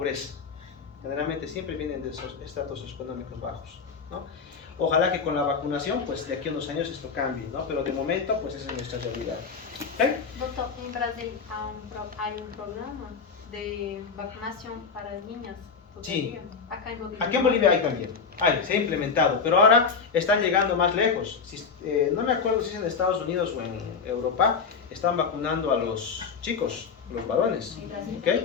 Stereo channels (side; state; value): right; quieter; 5.5 dB